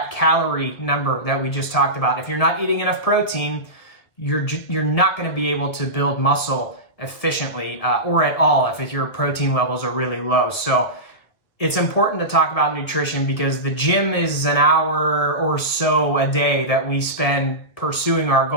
calorie number that we just talked about. If you're not eating enough protein, you're not going to be able to build muscle efficiently or at all if your protein levels are really low. So it's important to talk about nutrition because the gym is an hour or so a day that we spend pursuing our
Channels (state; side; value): late; right; 2.0 ms